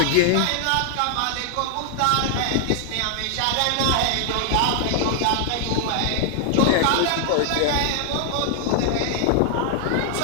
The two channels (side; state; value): both; different; correlation 0.00